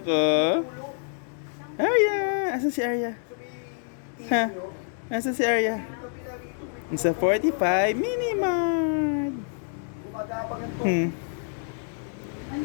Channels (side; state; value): right; silent; digital silence